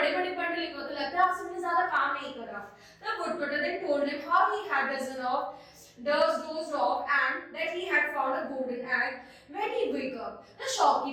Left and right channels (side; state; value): both; identical; correlation 1.00